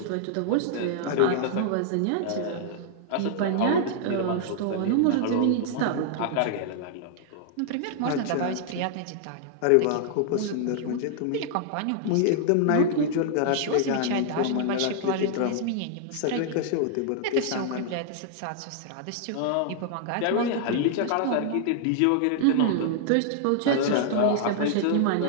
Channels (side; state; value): both; different; correlation -0.01